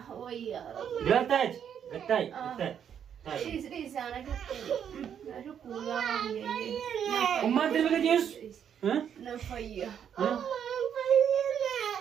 Bilal tai gatai Isa anak itu kurang ini. Umma terbaga Yesus Nafaya.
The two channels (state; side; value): quieter; left; 8.6 dB